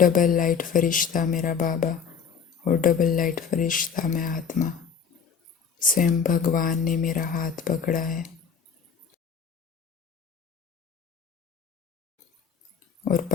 लाइट फरिश्ता मेरा बाबा और डबल लाइट फरिश्ता मैं आत्मा। स्वयं भगवान ने मेरा हाथ पकड़ा है और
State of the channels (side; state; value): right; quieter; 6.6 dB